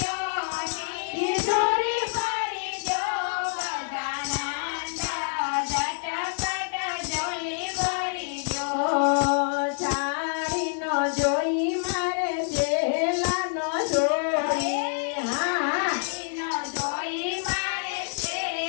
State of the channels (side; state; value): right; silent; 60 dB below the other